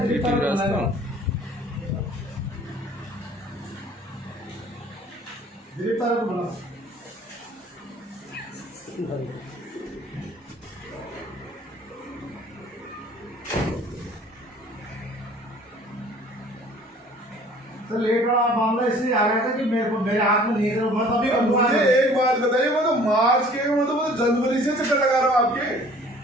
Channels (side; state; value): both; normal; correlation 0.52